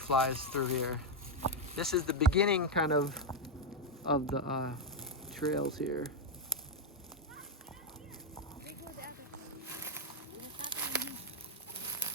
through here. This is the beginning kind of the trails here.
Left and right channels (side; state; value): both; normal; correlation 0.03